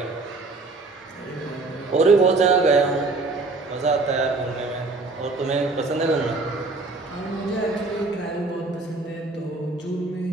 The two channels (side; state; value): left; quieter; 3.5 dB